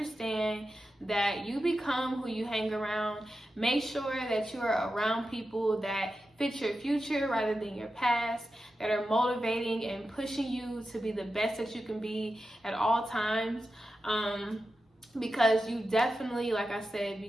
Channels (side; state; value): both; normal; correlation 0.91